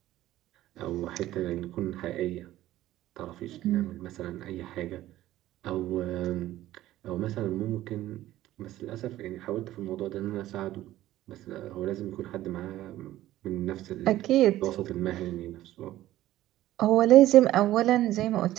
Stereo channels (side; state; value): left; quieter; 14.7 dB